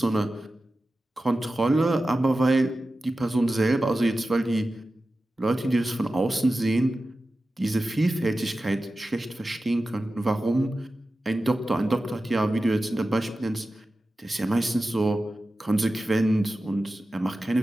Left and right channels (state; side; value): normal; both; correlation 0.94